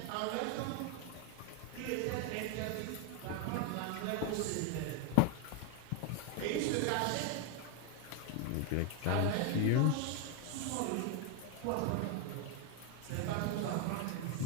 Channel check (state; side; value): different; both; correlation 0.01